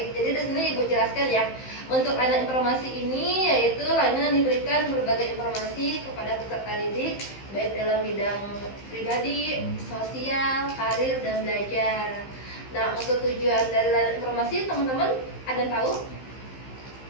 Jadi di sini Ibu jelaskan ya. Untuk layanan informasi ini yaitu layanan diberikan berbagai informasi kepada peserta didik baik dalam bidang pribadi, sosial, karir, dan belajar. Nah, untuk tujuan dari layanan informasi teman-teman ada yang tahu?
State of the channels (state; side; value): late; right; 15 ms